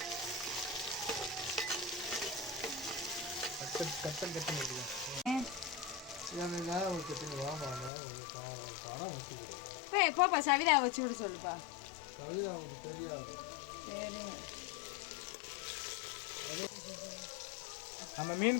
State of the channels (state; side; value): drops out; right; at 7.9 s